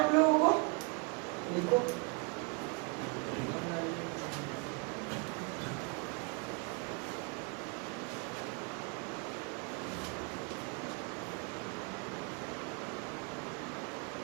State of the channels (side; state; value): left; quieter; 33.5 dB